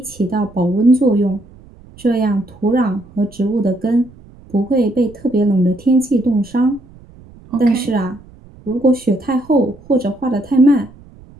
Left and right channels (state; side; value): noise; right; rumble, 23 dB below the sound